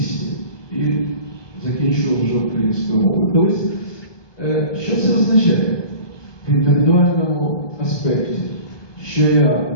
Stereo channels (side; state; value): right; late; 1.2 ms